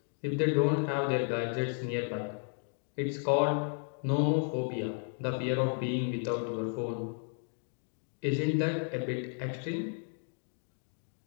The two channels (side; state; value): right; silent; 56 dB below the other